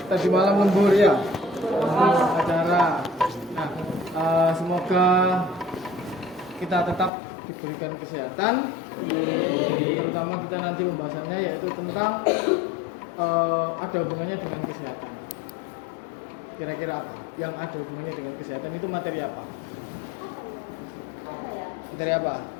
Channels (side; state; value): right; drops out; at 7.1 s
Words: tadi malam lembur ya? OSIS acara. Nah, semoga kita tetap diberikan kesehatan. Terutama kita nanti pembahasannya yaitu tentang ada hubungannya dengan kesehatan. Kira-kira apa? Yang ada hubungannya dengan kesehatan itu materi apa? Materi apa?